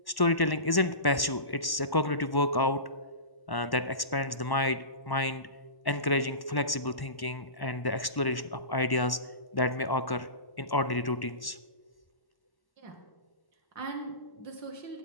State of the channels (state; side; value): late; right; 1.1 ms